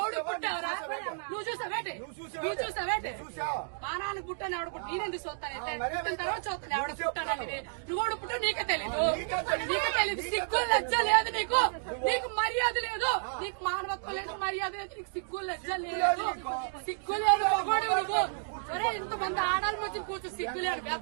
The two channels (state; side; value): silent; left; digital silence